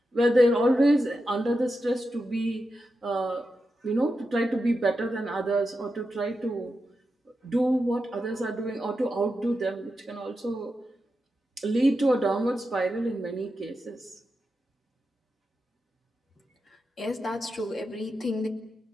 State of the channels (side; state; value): both; normal; correlation 0.89